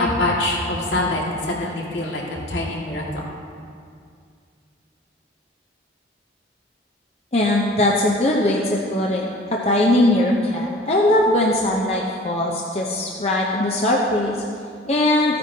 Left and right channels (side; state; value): both; normal; correlation 0.42